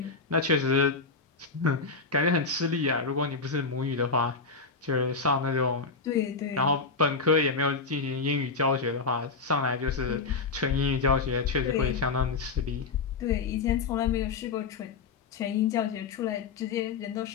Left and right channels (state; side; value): quieter; right; 4.4 dB